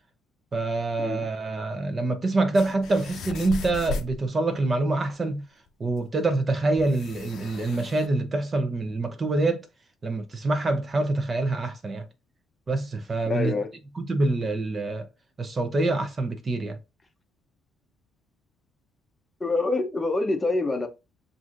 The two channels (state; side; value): normal; both; correlation 0.84